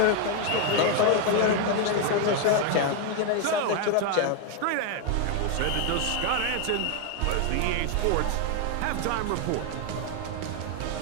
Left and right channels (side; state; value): both; different; correlation 0.00